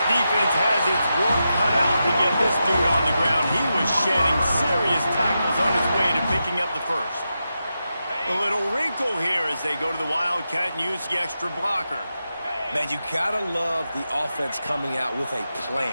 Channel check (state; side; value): inverted; both; correlation -0.88